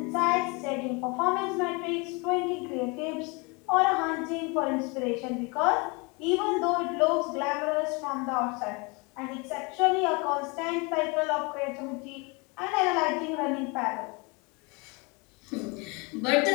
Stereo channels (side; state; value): right; quieter; 29.1 dB